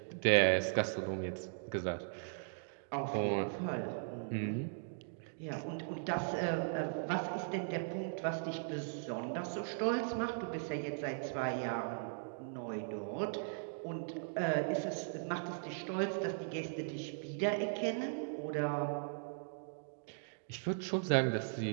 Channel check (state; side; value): silent; left; digital silence